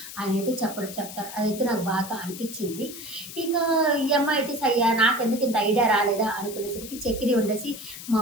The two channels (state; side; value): noise; left; hiss, 12 dB below the sound